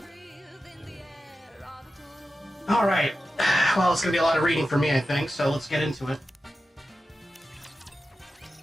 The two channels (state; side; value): normal; both; correlation 0.92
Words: All right, well, it's gonna be a lot of reading for me, I think. So let's get into it.